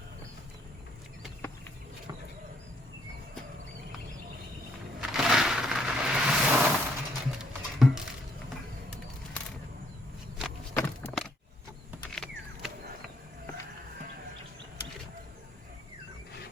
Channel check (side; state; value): both; normal; correlation 0.69